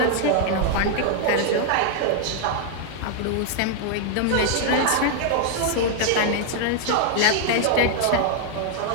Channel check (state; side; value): different; both; correlation 0.00